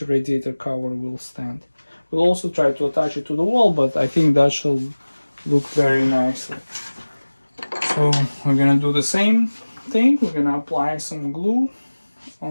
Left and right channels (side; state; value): both; inverted; correlation -1.00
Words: radiator cover will stand. We'll also try to attach it to the wall, but I think that shall look very nicely. So we're gonna do the same thing. We're gonna apply some glue